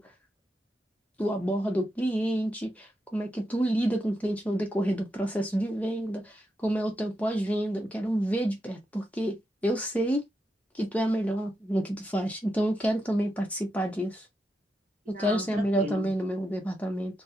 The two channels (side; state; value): both; normal; correlation 0.85